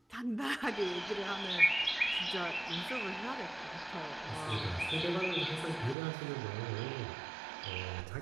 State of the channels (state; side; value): drops out; left; at 6.0 s